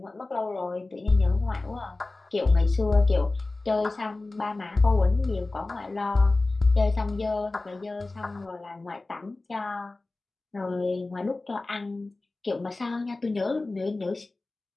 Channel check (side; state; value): right; quieter; 3.2 dB